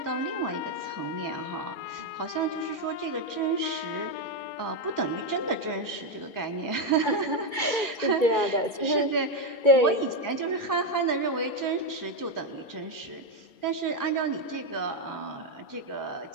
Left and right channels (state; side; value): late; right; 2.2 ms